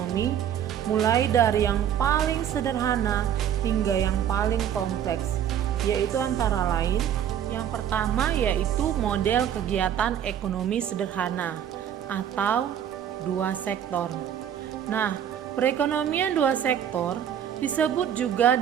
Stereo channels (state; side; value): quieter; left; 9.7 dB